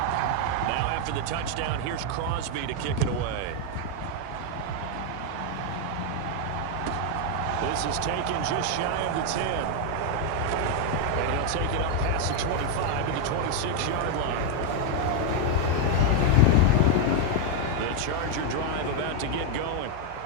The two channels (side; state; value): both; different; correlation 0.01